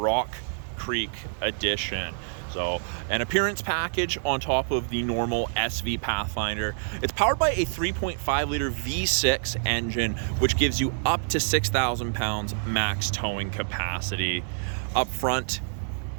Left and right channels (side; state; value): left; silent; digital silence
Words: Creek Edition. So an appearance package on top of the normal SV Pathfinder. It's powered by a 3.5 liter V6 engine, which gives you up to 6,000 pounds max towing capacity. Up front,